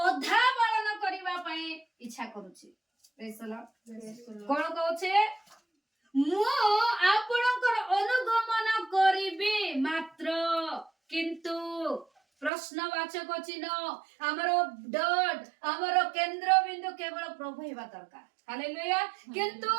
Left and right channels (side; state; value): left; drops out; at 12.5 s